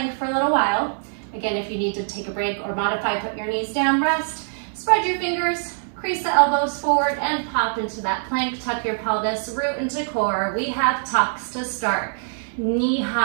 for a little while. Again, if you need to take a break or modify, put your knees down, rest, spread your fingers, crease the elbows forward and pop into that plank. Tuck your pelvis, root into core. We have tucks to start. Knee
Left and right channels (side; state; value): left; silent; 63 dB below the other